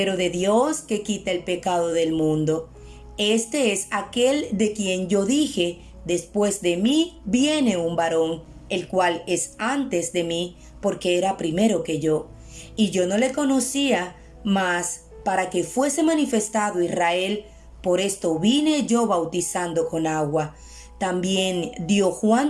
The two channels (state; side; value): identical; both; correlation 1.00